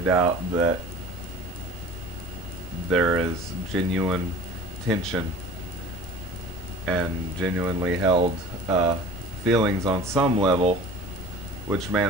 that there is genuine tension and genuinely held feelings on some level which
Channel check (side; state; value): left; noise; rumble, 16 dB below the sound